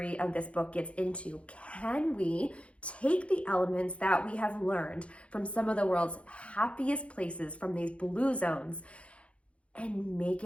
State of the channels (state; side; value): late; right; 0.061 ms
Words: of this book gets into. Can we take the elements that we have learned from some of the world's happiest places, from these blue zones, and make